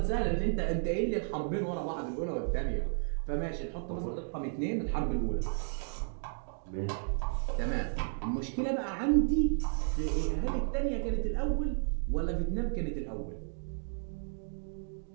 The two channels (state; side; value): silent; left; digital silence